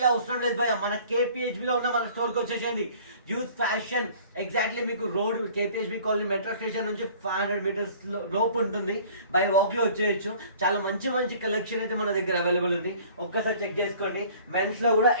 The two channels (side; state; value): both; inverted; correlation -0.50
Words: అవసరం లేదు భయ్యా. మన KPHB లో ఉన్న మన స్టోర్ కి వచ్చేసింది. యూత్ ఫ్యాషన్ ఎగ్జాక్ట్లీ మీకు road KPHB colony metro station నుంచి 500 మీటర్స్ లోపు ఉంటుంది. బై వాక్ లో వచ్చేయచ్చు. చాలా మంచి కలెక్షన్ అయితే మన దగ్గర అవైలబుల్ ఉంది. ఒక్కసారి చెక్ చేసుకోండి. మెన్స్ లో కూడా